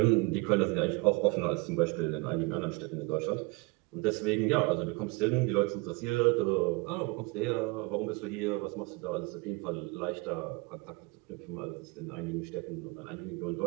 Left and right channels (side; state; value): left; quieter; 26.9 dB